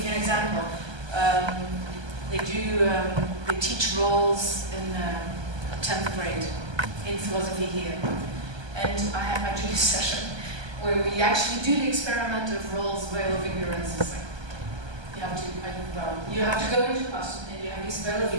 you an example, they teach roles in 10th grade in philosophy here. And I do this session where we actually do the experiment of roles, veil of ignorance. It's like, you have to go into class and you have this veil of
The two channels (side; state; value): left; late; 1.2 ms